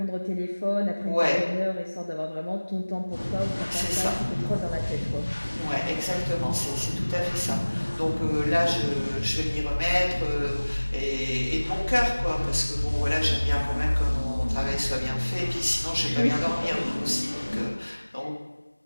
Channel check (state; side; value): inverted; both; correlation -1.00